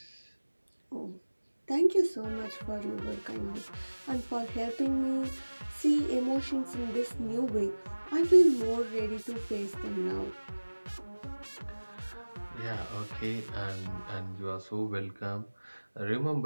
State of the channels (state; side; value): inverted; both; correlation -1.00